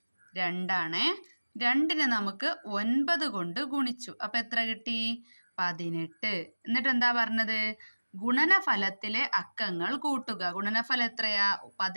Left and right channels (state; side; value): inverted; both; correlation -1.00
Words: 2 2നെ നമുക്ക് 9 കൊണ്ട് ഗുണിച്ചു. അപ്പം എത്ര കിട്ടി? 18. എന്നിട്ട് എന്താ പറഞ്ഞത്? ഗുണനഫലത്തിലെ അക്കങ്ങൾ കൂട്ടുക. ഗുണനഫലം എത്രയാ?